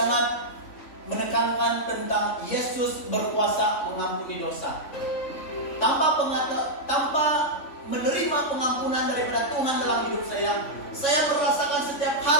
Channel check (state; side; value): late; right; 3.5 ms